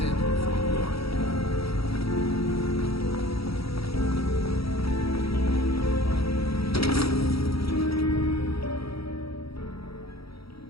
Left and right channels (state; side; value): late; right; 0.76 ms